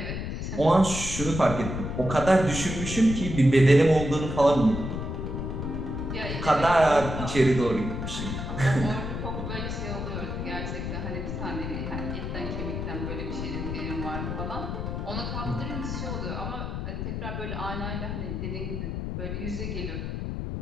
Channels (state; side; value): noise; left; rumble, 4 dB below the sound